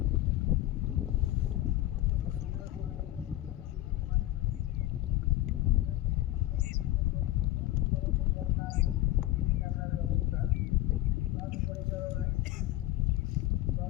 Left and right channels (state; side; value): quieter; right; 15.5 dB